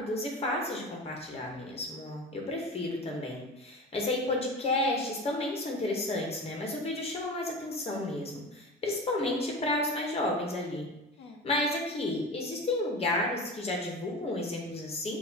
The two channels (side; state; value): both; normal; correlation 0.31